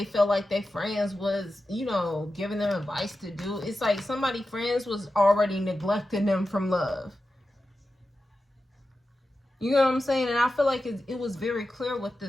felt like their friends was, you know, giving them advice to do. It's like somebody friends was already neglecting them from love. You know what I'm saying? And I feel like it was very clear what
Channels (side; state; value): both; normal; correlation 0.92